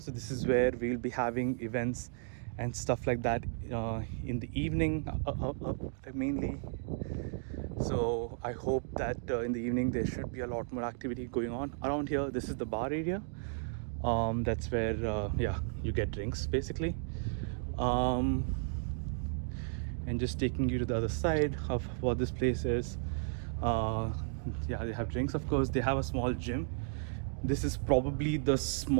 this is where we'll be having events and stuff like that in the evening mainly. So I hope that in the evening there should be a lot more activity going on around here. This is the bar area. That's where yeah, you get drinks basically. And just taking you to the other side of what this place is. Yeah, they have drinks, of course. They have a small gym. This is probably the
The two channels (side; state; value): left; silent; digital silence